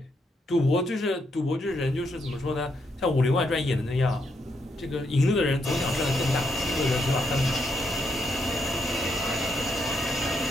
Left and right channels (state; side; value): normal; both; correlation 0.78